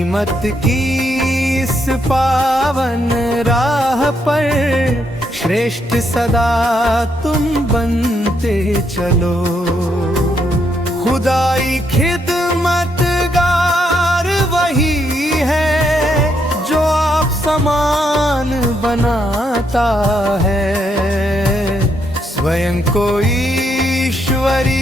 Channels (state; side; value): normal; both; correlation 0.76